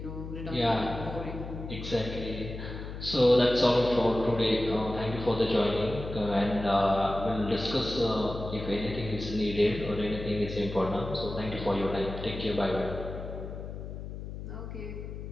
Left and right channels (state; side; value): noise; left; hum, 9 dB below the sound